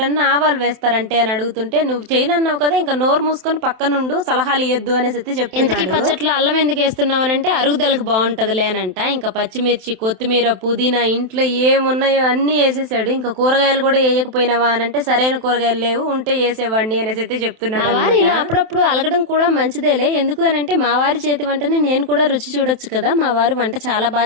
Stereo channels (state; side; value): late; left; 27 ms